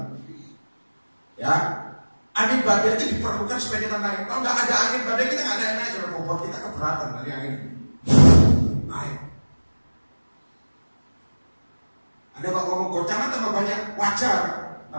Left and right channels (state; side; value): inverted; both; correlation -1.00